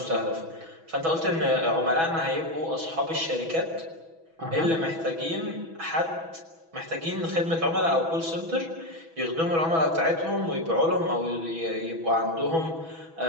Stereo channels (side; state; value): left; late; 6.1 ms